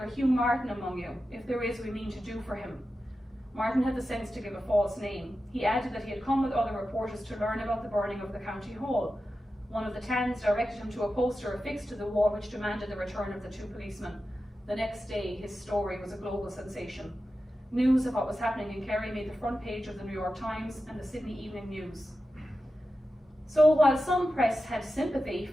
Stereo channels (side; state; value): both; normal; correlation 0.92